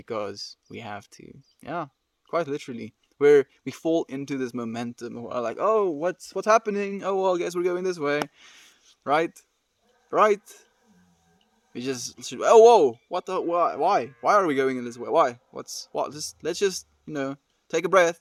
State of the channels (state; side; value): identical; both; correlation 1.00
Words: we have to. Yeah, quite literally. Where we fall into this momentum. We're like, oh, what's happening? Oh, well, I guess we're going this way, right? Right? We just oh whoa, what the why are we going in this way? Why? What? Just let's just take a breath,